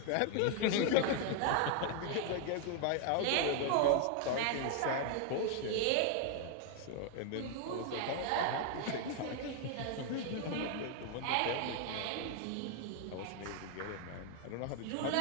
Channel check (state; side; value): different; both; correlation 0.00